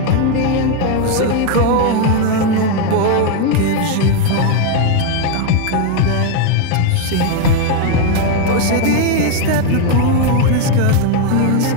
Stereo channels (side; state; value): both; different; correlation 0.01